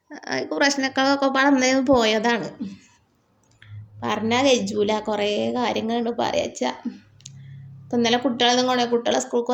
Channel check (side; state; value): both; identical; correlation 1.00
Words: പ്രശ്നങ്ങളൊക്കെ പറഞ്ഞ് പോയതാണ്. പറഞ്ഞാൽ കഴിയൂല, കുറേ കാര്യങ്ങളുണ്ട് പറയാച്ചാ. ഇപ്പം ഇന്നലെ കുട്ടികളെ സ്കൂൾക്ക്